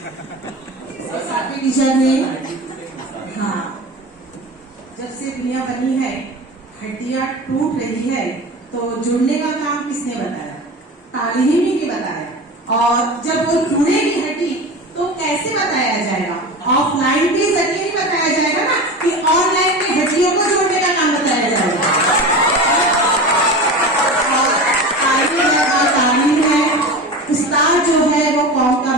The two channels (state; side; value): normal; both; correlation 0.30